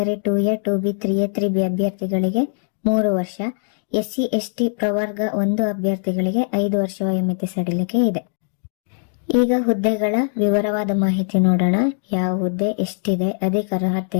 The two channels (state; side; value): silent; right; digital silence